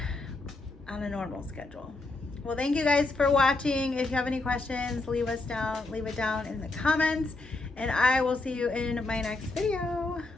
on a normal schedule. Well, thank you guys for watching. If you have any questions, leave it down in the comments. And I will see you in my next video.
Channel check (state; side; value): quieter; right; 3.2 dB